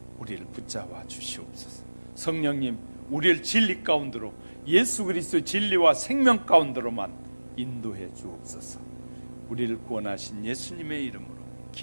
우리를 붙잡아 주시옵소서. 성령님, 우리를 진리 가운데로, 예수 그리스도의 진리와 생명 가운데로만 인도해 주옵소서. 우리를 구원하신 예수님의 이름으로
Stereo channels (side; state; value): both; inverted; correlation -1.00